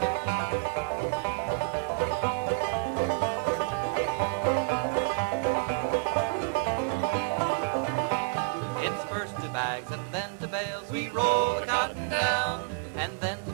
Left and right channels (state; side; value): silent; left; digital silence